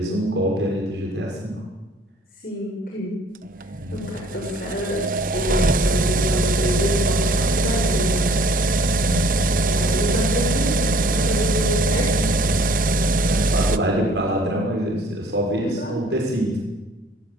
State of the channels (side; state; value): both; normal; correlation 0.56